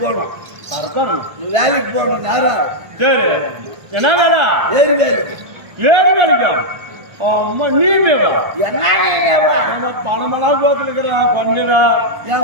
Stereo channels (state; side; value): late; left; 1.6 ms